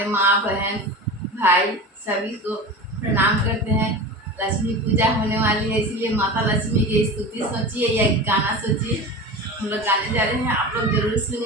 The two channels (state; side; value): normal; both; correlation 0.30